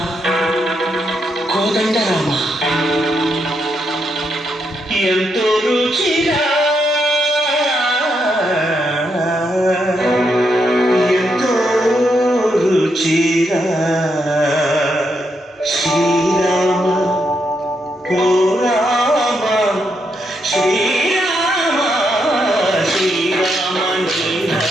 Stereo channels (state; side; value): normal; both; correlation 0.80